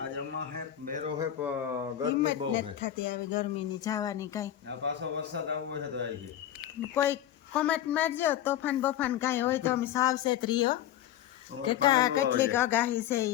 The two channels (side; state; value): right; quieter; 11.5 dB